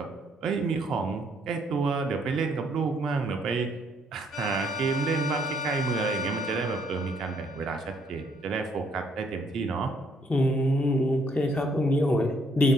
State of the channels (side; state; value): both; normal; correlation 0.68